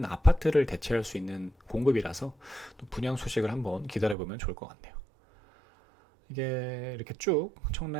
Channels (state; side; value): drops out; left; at 4.2 s